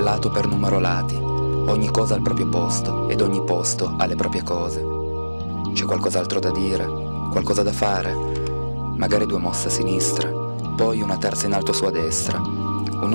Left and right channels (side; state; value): both; inverted; correlation -1.00